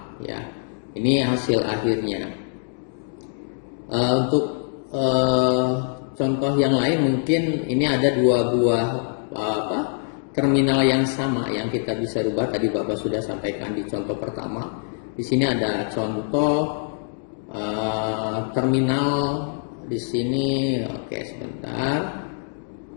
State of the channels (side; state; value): right; silent; digital silence